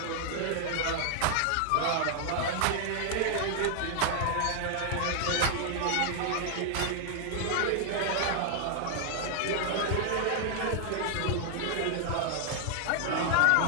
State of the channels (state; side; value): different; both; correlation 0.00